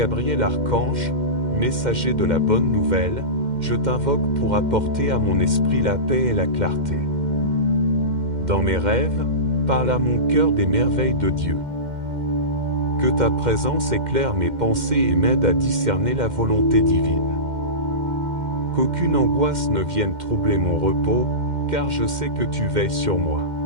Archange, messager de la bonne nouvelle, je t'invoque pour apporter à mon esprit la paix et la clarté. Dans mes rêves, parle à mon cœur des merveilles de Dieu. Que ta présence éclaire mes pensées et m'aide à discerner la volonté divine. Qu'aucune angoisse ne vienne troubler mon repos, car je sais que tu veilles sur moi.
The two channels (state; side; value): late; left; 2.1 ms